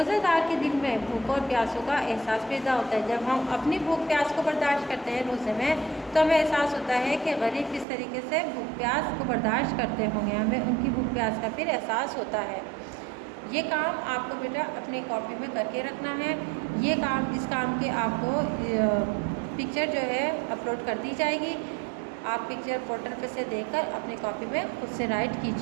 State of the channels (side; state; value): left; drops out; at 7.9 s